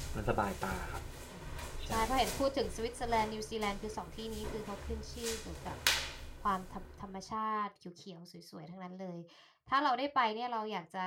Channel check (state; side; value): identical; both; correlation 1.00